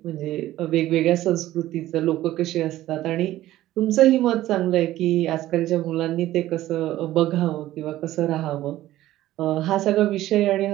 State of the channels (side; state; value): left; quieter; 14.8 dB